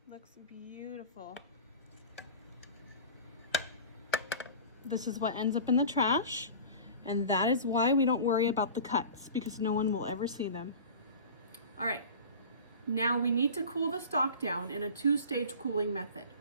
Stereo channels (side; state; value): both; inverted; correlation -0.37